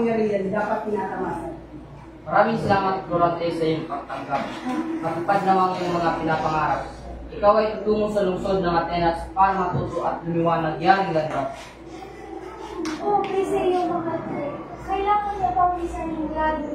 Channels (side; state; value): both; identical; correlation 1.00